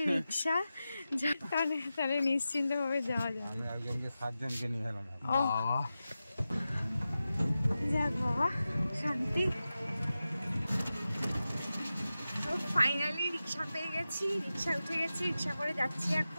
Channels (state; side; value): inverted; both; correlation -0.93